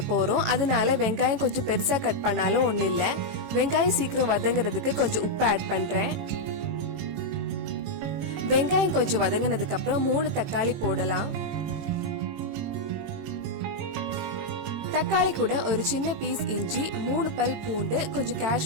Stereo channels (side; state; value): left; late; 18 ms